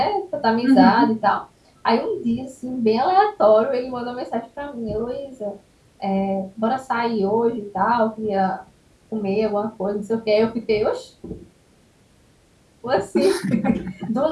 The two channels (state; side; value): identical; both; correlation 1.00